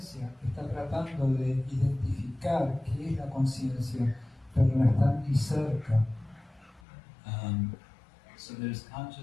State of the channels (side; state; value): right; drops out; at 6.8 s